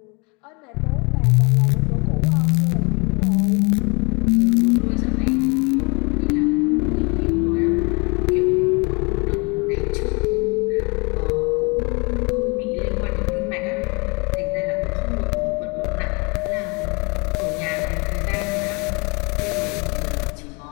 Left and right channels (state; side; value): quieter; right; 30.2 dB